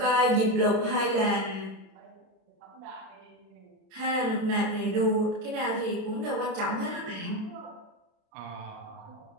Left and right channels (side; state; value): left; late; 30 ms